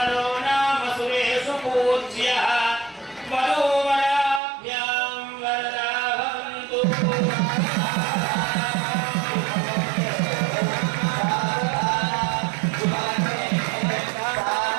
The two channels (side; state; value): left; drops out; at 4.4 s